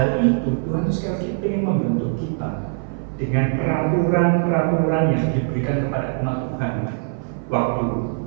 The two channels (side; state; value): left; silent; 56 dB below the other